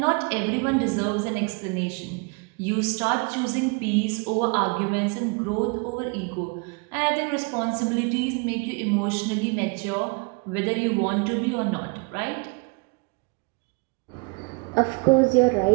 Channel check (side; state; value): left; quieter; 30.8 dB